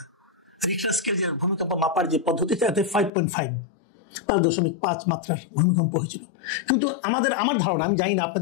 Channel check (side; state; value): right; drops out; at 3.1 s